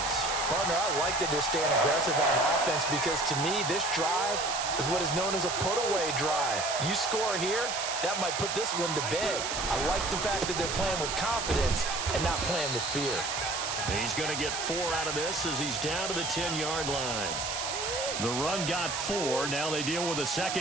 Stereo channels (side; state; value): right; noise; hiss, 3 dB below the sound